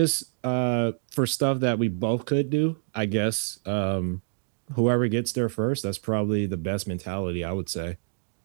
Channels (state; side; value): silent; left; digital silence